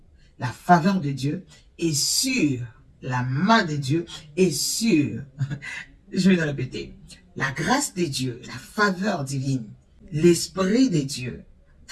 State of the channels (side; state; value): both; identical; correlation 1.00